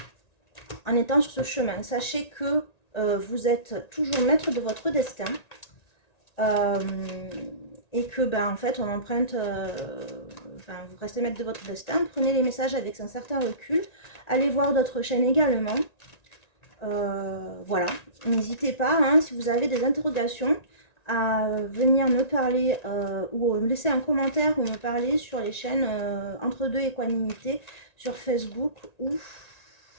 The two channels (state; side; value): late; right; 1.9 ms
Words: en étant sur ce chemin. Sachez que vous êtes toujours maître de votre destin. Et que ben en fait on emprunte enfin vous restez maître de votre destin, prenez les messages avec un certain recul, allez voir d'autres chaînes également, voilà, n'hésitez pas hein, si vous avez des interrogations à venir me parler ou me laisser un commentaire ou me parler sur les chaînes Entre Deux Équanimité sur Facebook ou